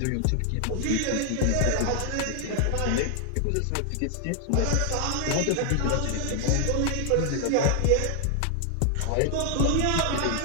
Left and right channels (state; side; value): different; both; correlation 0.00